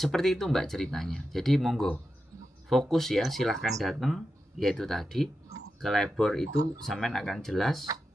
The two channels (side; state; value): both; normal; correlation 0.90